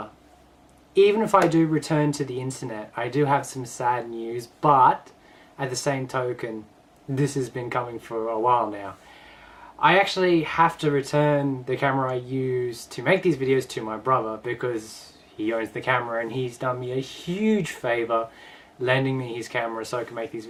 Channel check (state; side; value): identical; both; correlation 1.00